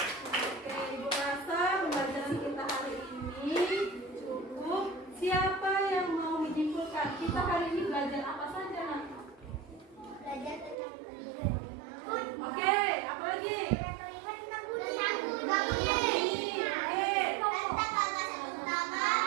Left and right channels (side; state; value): left; drops out; at 10.8 s